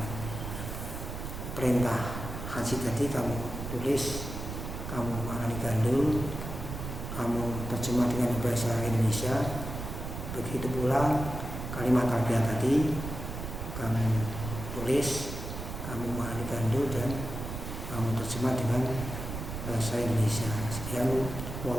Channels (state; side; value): noise; right; rumble, 7 dB below the sound